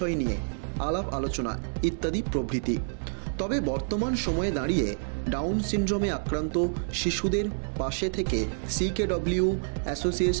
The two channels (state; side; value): silent; left; digital silence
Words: নিয়ে আলাপ আলোচনা ইত্যাদি প্রভৃতি। তবে বর্তমান সময়ে দাঁড়িয়ে ডাউন সিনড্রোমে আক্রান্ত শিশুদের পাশে থেকে CKW